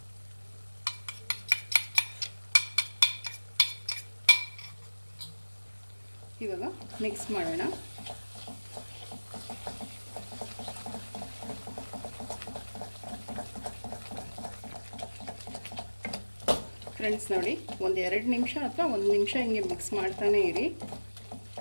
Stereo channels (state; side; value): inverted; both; correlation -1.00